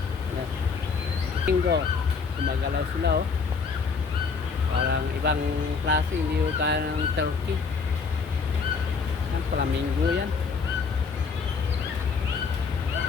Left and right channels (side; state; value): right; quieter; 5.1 dB